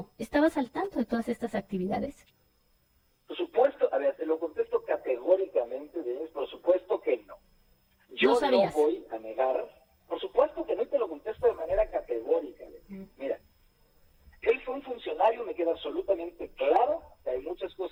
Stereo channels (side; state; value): both; identical; correlation 1.00